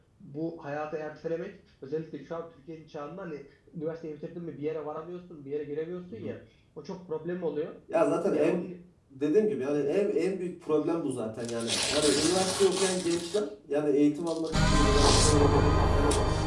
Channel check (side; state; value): both; identical; correlation 1.00